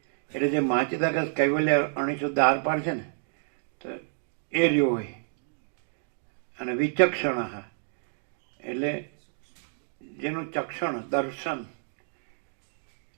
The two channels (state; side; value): silent; left; digital silence